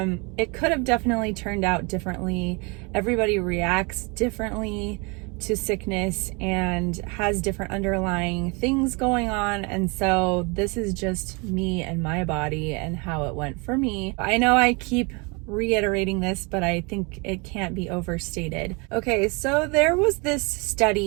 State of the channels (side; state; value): left; quieter; 30.1 dB